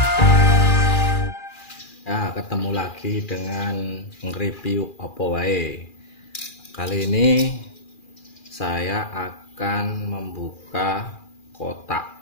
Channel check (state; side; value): late; right; 2.4 ms